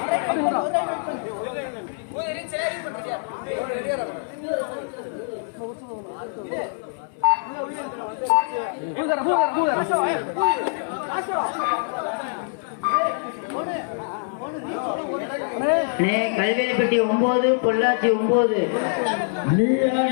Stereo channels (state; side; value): silent; right; digital silence